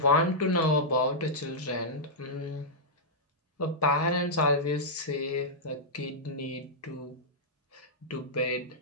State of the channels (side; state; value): both; normal; correlation -0.10